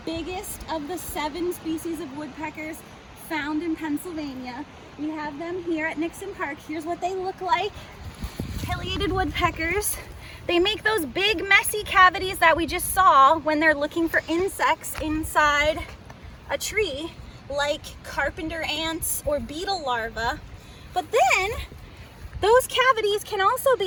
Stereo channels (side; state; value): both; identical; correlation 1.00